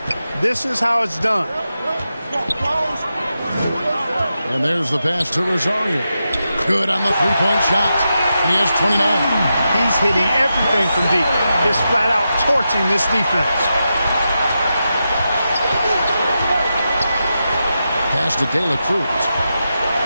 This is how it's done. And there's the pass to Rosario. Good on the three-point shot. He has 29. He's hitting everything from deep. Just flat out torching this defense. pass to De La Cruz.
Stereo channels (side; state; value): both; inverted; correlation -0.88